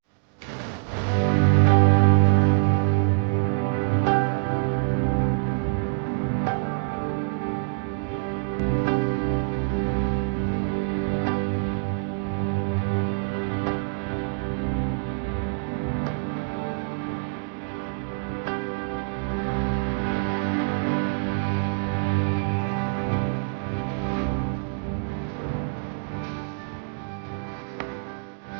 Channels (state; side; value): silent; left; digital silence